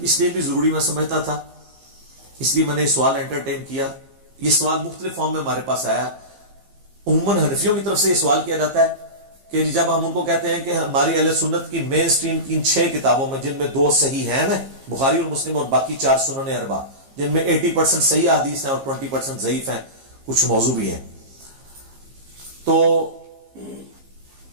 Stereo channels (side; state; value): left; late; 15 ms